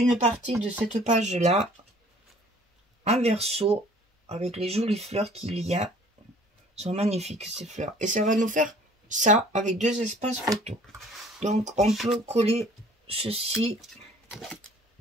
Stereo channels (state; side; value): normal; both; correlation 0.53